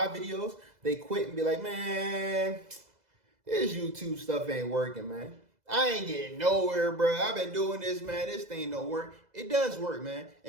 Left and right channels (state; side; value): late; left; 2.0 ms